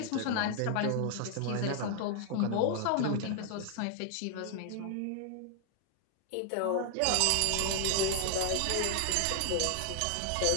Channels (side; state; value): both; different; correlation 0.00